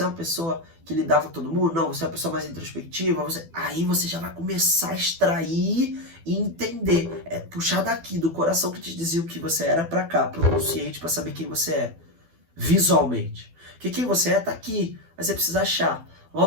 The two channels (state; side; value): late; left; 12 ms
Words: é uma pessoa que lidava com todo mundo? Não, você é uma pessoa mais introspectiva? Aí você já vai começar a extrair e entender. É puxar daqui, do coração que te dizia o que você era pra cá, pro consciente, pra saber quem você é. Visualmente. Porque quem você é tá aqui, mas você precisa achar.